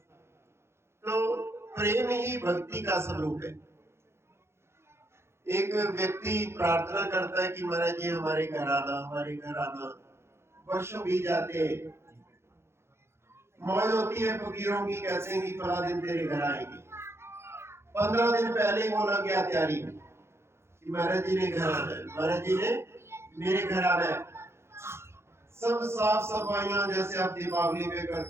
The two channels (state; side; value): late; left; 0.12 ms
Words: तो प्रेम ही भक्ति का स्वरूप है। एक व्यक्ति प्रार्थना करता है कि महाराज जी हमारे घर आना, हमारे घर आना। वर्षों बीत जाते हैं, मौज होती है फकीरों की, कहते हैं कि फला दिन तेरे घर आएंगे। 15 दिन पहले ही वो लग गया तैयारी में कि महाराज जी ने घर आना है, महाराज जी ने मेरे घर आना है। सब साफ सफाइयां जैसे आप दीपावली में